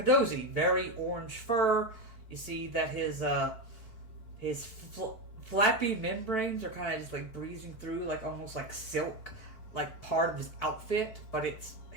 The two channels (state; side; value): late; right; 4.5 ms